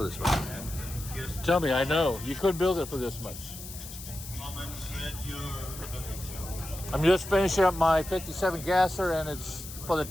this much. Tell me, I know. You couldn't build it for this much. I'm just finishing up my 57 gasser, and it's for the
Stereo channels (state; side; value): noise; left; hiss, 12 dB below the sound